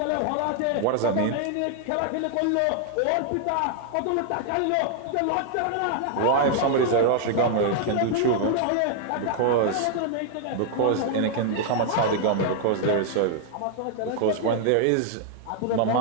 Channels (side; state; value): both; different; correlation 0.00